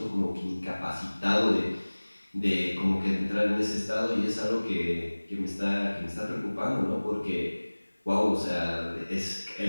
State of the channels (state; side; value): inverted; both; correlation -1.00